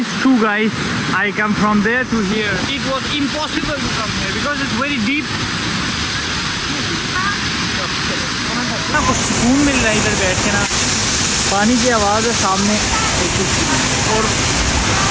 two guys, I come from there to here. It was impossible to come here because it's very deep. ना कुछ सुकून मिल रहा है इधर बैठ के ना। पानी की आवाज़ है सामने और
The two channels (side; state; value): both; identical; correlation 1.00